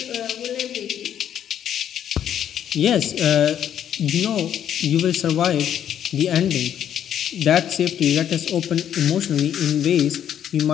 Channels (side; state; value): right; quieter; 9.9 dB